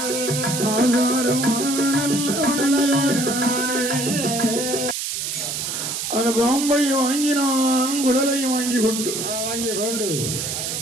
அந்த பாம்பை வாங்கினான், குடலை வாங்கிக் கொண்டு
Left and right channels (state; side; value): noise; right; hiss, 3 dB below the sound